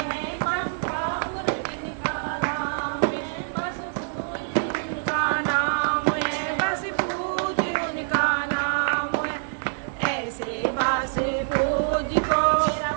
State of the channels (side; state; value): left; silent; digital silence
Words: बास पूज को